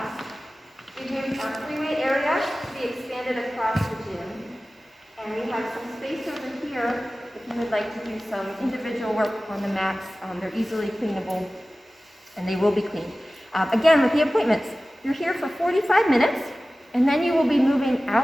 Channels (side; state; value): both; normal; correlation 0.96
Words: We've moved our freeway area to be expanded across the gym. And we have some space over here if you would like to do some individual work on the mats. They're easily cleanable, and they will be cleaned. Again, with the appointments, you're here for 45 minutes, and then you will be moving